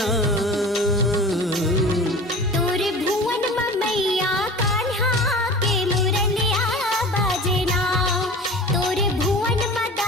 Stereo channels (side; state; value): both; normal; correlation 0.38